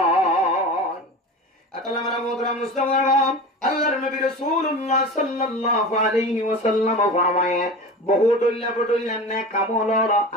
আতাল্লাহ মারা মোহতরম মুসলমান আল্লাহর নবী রাসূলুল্লাহ সাল্লাল্লাহু আলাইহি ওয়াসাল্লাম ফরমায়ে বহু ডুল্লা নে কামলর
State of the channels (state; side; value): normal; both; correlation 0.32